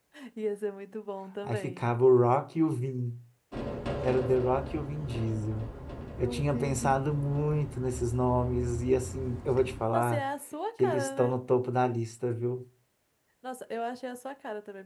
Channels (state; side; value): identical; both; correlation 1.00